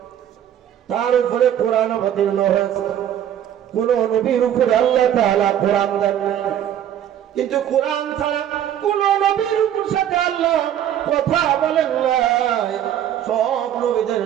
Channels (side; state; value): left; quieter; 10.5 dB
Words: তার উপরে কোরআন অবতীর্ণ হয়েছে। কোন নবীর উপরে আল্লাহ তাআলা কোরআন দেন নাই, কিন্তু কোরআন ছাড়া কোন নবীর সাথে আল্লাহ কথা বলেন নাই। সব নবীদের